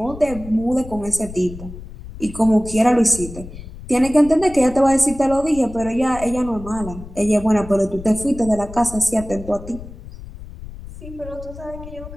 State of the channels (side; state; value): left; noise; rumble, 14 dB below the sound